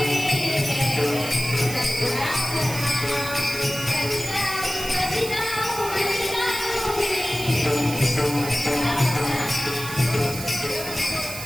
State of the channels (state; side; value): noise; right; hiss, 9 dB below the sound